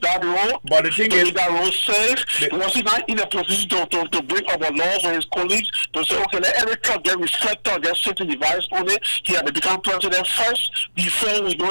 that road? But the thing is, make that road safe? Was he not in a position to bring up a law for his colleagues to say, okay, let every truck get reflector, get safety device on it? He had to become president first before we know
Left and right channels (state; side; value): inverted; both; correlation -1.00